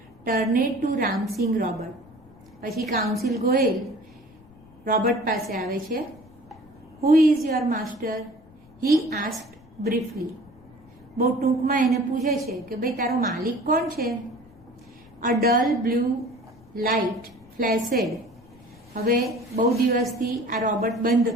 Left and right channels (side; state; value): left; noise; rumble, 25 dB below the sound